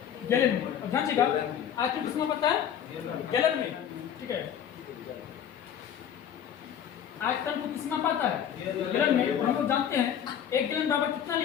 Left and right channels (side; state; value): right; quieter; 9.2 dB